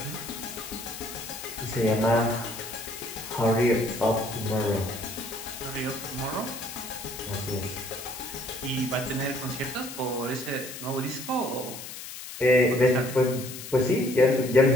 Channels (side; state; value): left; noise; hiss, 11 dB below the sound